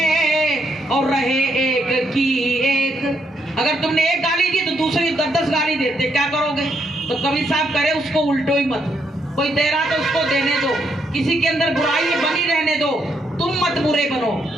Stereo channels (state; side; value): normal; both; correlation 0.76